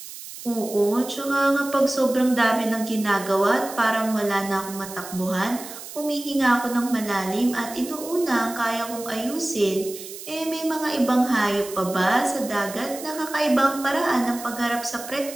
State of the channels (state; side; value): noise; right; hiss, 13 dB below the sound